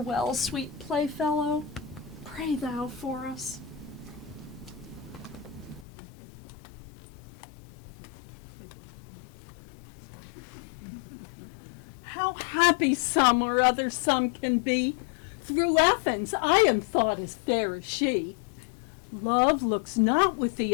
sweet playfellow, pray thou for us. How happy some or other some can be. Through Athens I am thought as fair as she. Love looks not with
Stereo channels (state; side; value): drops out; right; at 5.9 s